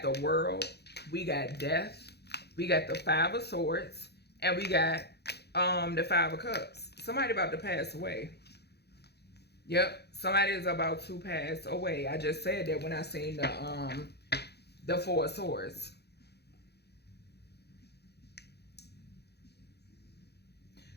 the world, we got death, we got the 5 of Swords, and we got the 5 of Cups. Somebody about to pass away. Yep, somebody is about to pass away. I just said that when I seen the 4 of Swords.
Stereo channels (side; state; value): right; late; 0.48 ms